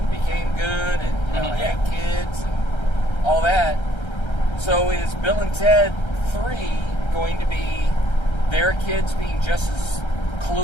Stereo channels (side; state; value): right; late; 1.3 ms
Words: became good and had kids and all that. So is Bill and Ted 3 going to be their kids being just as